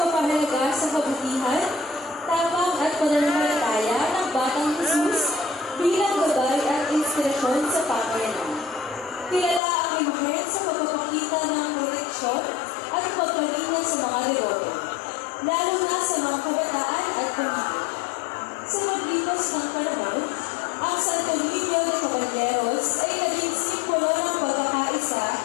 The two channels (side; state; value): right; drops out; at 9.6 s